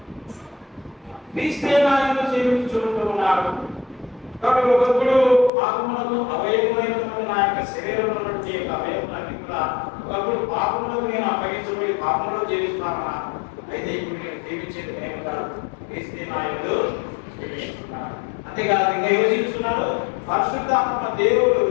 క్రీస్తే నా యందు జీవించుచున్నాడు. కాబట్టి ఒకప్పుడు పాపములకు అవయవమైనటువంటి నా యొక్క శరీరంలో ఉన్నటువంటి అవయవాన్ని కూడా ఒకప్పుడు పాపములకు నేను అప్పగించబడి పాపంలో జీవిస్తాను. అయితే ఇప్పుడు నేను జీవించేది నేను కాదు, క్రీస్తే నా యందు జీవిస్తున్నాను. అంతేకాదు ఇంకా ఎవరు జీవిస్తున్నారు? పరిశుద్ధాత్మ దేవుడు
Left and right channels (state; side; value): drops out; right; at 5.5 s